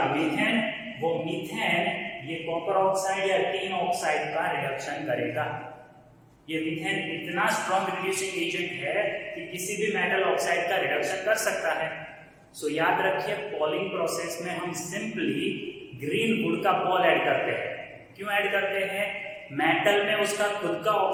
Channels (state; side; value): identical; both; correlation 1.00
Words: मीथेन। वो मीथेन ये कॉपर ऑक्साइड या टीन ऑक्साइड का रिडक्शन करेगा। ये मीथेन इतना स्ट्रॉन्ग रिड्यूसिंग एजेंट है कि किसी भी मेटल ऑक्साइड का रिडक्शन कर सकता है। सो याद रखिए, पॉलिंग प्रोसेस में हम सिंपली ग्रीन वुड का पॉल ऐड करते हैं। क्यों ऐड करते हैं? मेटल में उसका खुद का